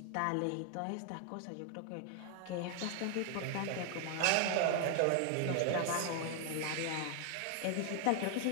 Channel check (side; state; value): both; different; correlation 0.00